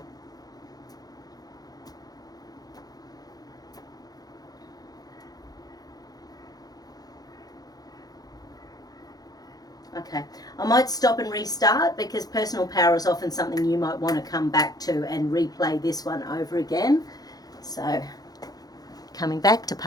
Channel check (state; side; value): late; right; 0.19 ms